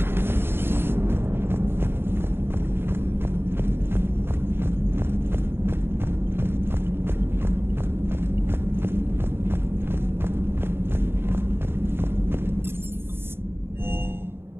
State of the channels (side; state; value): left; late; 0.11 ms